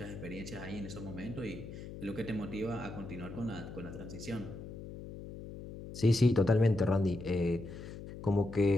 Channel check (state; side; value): noise; left; hum, 11 dB below the sound